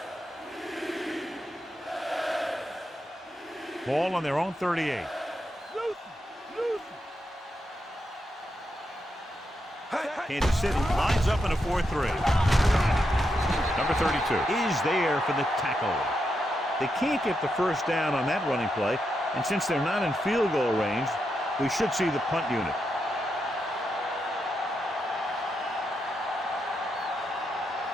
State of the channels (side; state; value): both; normal; correlation 0.84